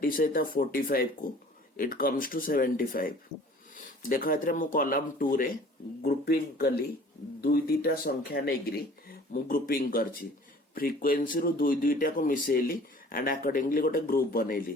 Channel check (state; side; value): normal; both; correlation 0.49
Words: सहित 45 को इट कम्स टू 75 देखो एतरे मु कॉलम 2 रे ग्रुपिंग कली दुई दीटा संख्या नेग्री मु ग्रुपिंग करछि फ्रीक्वेंसी रो दुई दुईटा को मिसेली एंड अकॉर्डिंगली गोटे ग्रुप